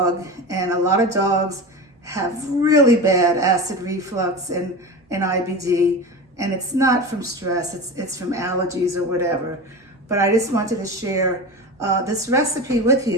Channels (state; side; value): normal; both; correlation 0.27